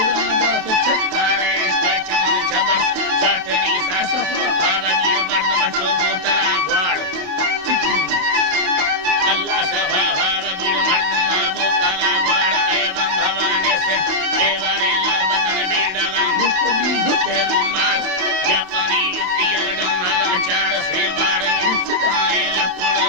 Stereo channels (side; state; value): left; late; 28 ms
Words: se chakare Stachman chabar Satani sasafa Bhavagir bardama chobo tala gwad Allah sabha Bhavagir bardama botala gwad Evam bhavane se Devare lal badan bidava Mustabi dhutte rumal Japani yutti yaradam Nalachar se bara Siddhae